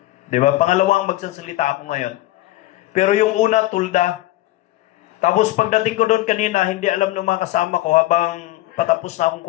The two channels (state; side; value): quieter; right; 16.9 dB